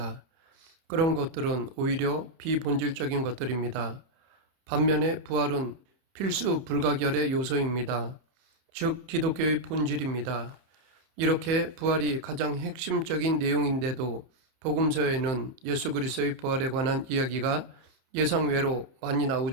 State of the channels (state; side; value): late; left; 31 ms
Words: 그런 것들은 오히려 비본질적인 것들입니다. 반면에 부활은 필수 불가결의 요소입니다. 즉 기독교의 본질입니다. 이렇게 부활이 가장 핵심적인 내용인데도 복음서에는 예수 그리스도의 부활에 관한 이야기가 예상외로 많이